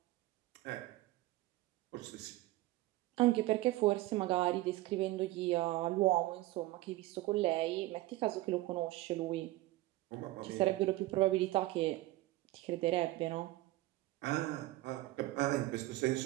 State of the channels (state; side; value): quieter; left; 17.9 dB